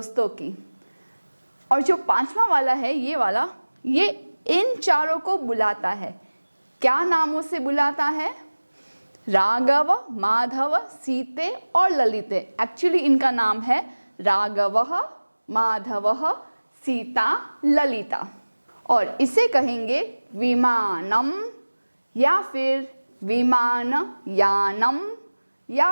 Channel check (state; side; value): inverted; both; correlation -1.00